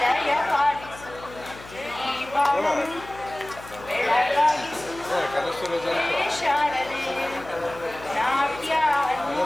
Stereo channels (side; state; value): left; noise; hum, 18 dB below the sound